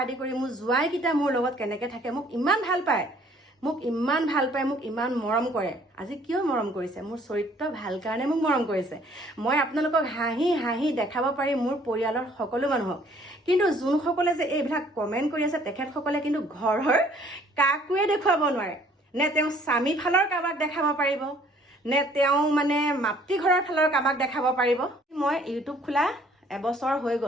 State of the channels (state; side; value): normal; both; correlation 0.59